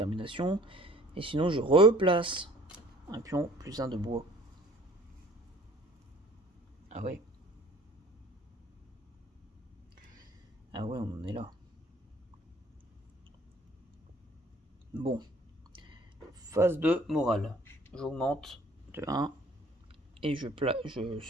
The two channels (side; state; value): both; normal; correlation 0.53